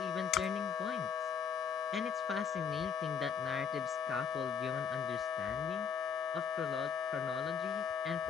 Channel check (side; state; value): right; quieter; 6.9 dB